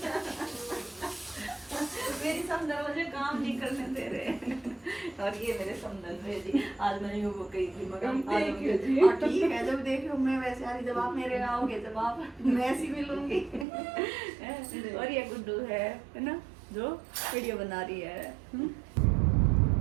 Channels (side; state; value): left; drops out; at 13.7 s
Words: मेरी समदन मुझे काम नहीं करने दे रहे। और ये मेरे समदन है जी, आज मैंने वो कही थी मगर ठीक है, जब देखो मैं वैसे आ रही, जब आप मेरे आओगे जब आप मैं ऐसी मिलूंगी। और ये गुड्डू है ना जो वीडियो बना रही है।